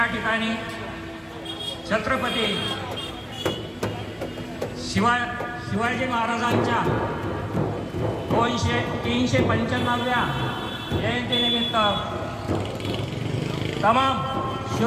ठिकाणी छत्रपती शिवाजी महाराजांच्या 395व्या जयंतीनिमित्त तमाम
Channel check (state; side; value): identical; both; correlation 1.00